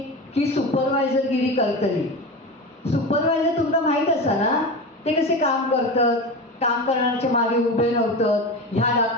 की सुपरवायझरगिरी करतली. सुपरवायझर तुमका माहित असा ना, ते कसे काम करतात, काम करण्याच्या मागे उभे नव्हतात, ह्या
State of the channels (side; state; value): both; normal; correlation 0.25